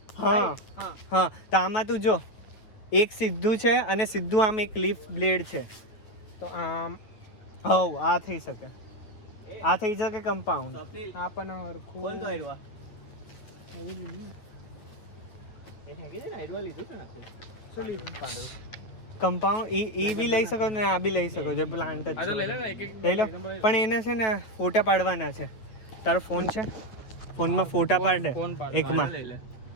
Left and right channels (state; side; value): late; right; 9.1 ms